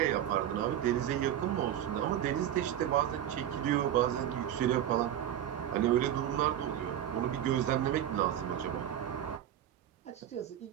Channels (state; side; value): quieter; left; 11.1 dB